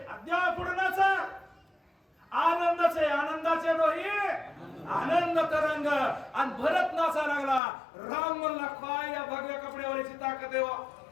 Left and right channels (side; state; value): right; drops out; at 7.6 s